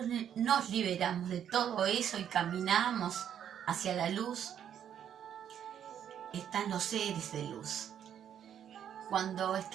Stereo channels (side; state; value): left; quieter; 9.3 dB